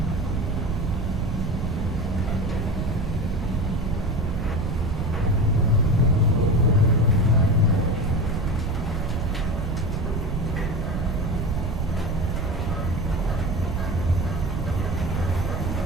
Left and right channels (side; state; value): right; noise; rumble, 1 dB below the sound